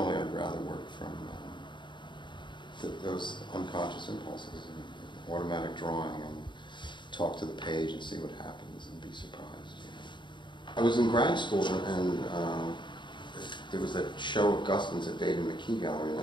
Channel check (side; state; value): right; late; 0.23 ms